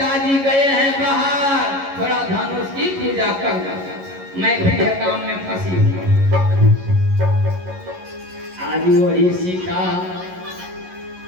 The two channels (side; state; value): left; late; 11 ms